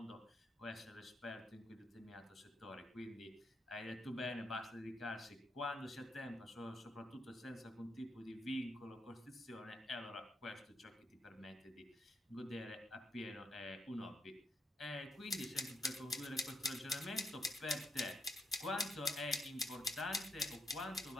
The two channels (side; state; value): both; normal; correlation 0.79